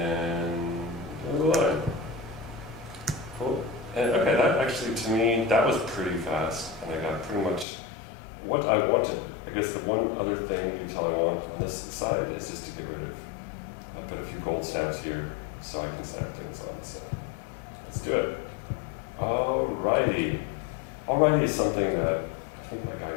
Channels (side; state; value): right; drops out; at 7.7 s